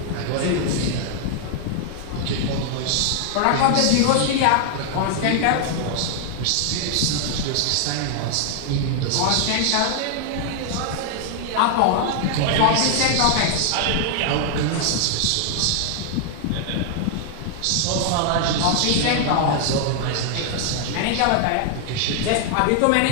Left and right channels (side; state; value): both; different; correlation 0.00